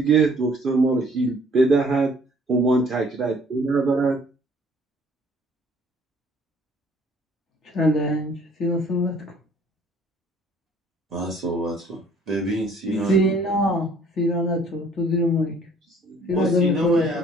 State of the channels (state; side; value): normal; both; correlation 0.57